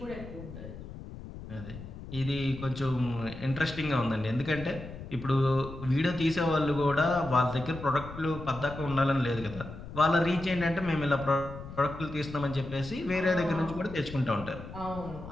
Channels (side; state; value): left; noise; rumble, 12 dB below the sound